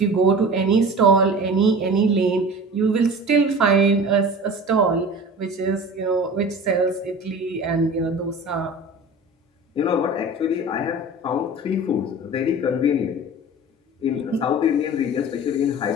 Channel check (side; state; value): both; normal; correlation 0.37